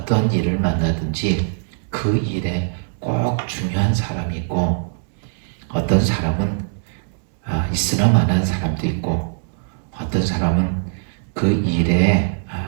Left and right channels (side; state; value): left; silent; digital silence